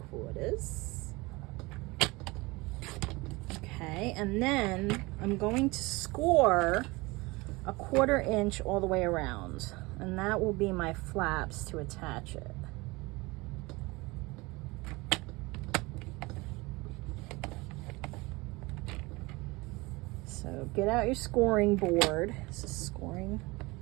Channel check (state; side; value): quieter; left; 23.4 dB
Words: 3/4. Okay, and then I'm going to score a 1/4 inch all the way around, and that will be my flaps to attach it. So get out your scoring board. This is scoring.